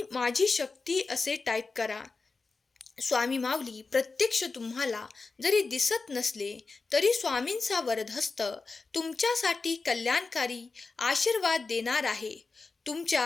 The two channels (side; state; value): right; quieter; 4.1 dB